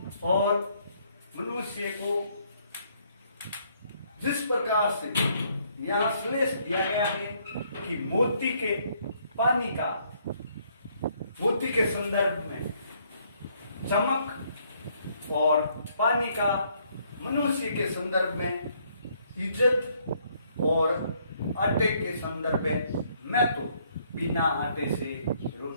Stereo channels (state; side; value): inverted; both; correlation -0.68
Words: और मनुष्य को जिस प्रकार से यहाँ श्लेष दिया गया है कि मोती के पानी का, मोती के संदर्भ में चमक और पानी का मनुष्य के संदर्भ में इज्जत और आटे के संदर्भ में महत्व। बिना आटे से,